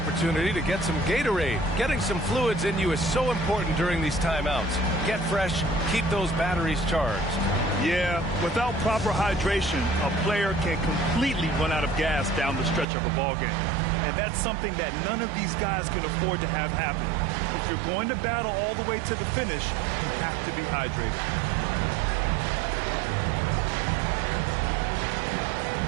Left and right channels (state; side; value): drops out; left; at 12.9 s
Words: to get some Gatorade. Getting some fluids in you is so important during these timeouts. Get fresh, keep those batteries charged. Yeah, without proper hydration, a player can completely run out of gas down the stretch of a ball game. And that's something that none of these guys can afford to have happen. If you're going to battle all the way to the finish, you have to be hydrated.